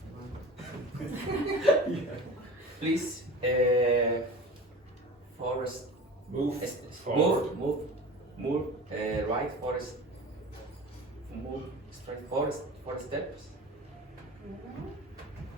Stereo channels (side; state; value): both; normal; correlation 0.36